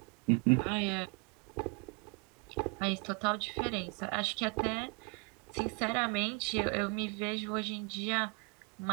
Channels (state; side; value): quieter; left; 30.4 dB